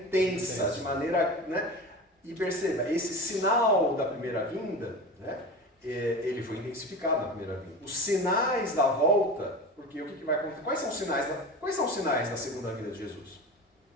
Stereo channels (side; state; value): both; normal; correlation 0.30